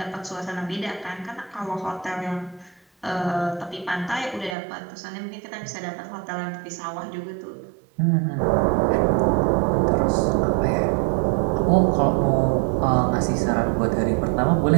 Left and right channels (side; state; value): left; drops out; at 4.5 s